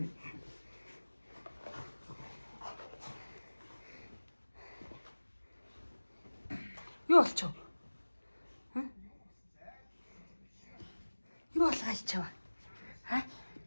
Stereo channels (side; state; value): both; inverted; correlation -1.00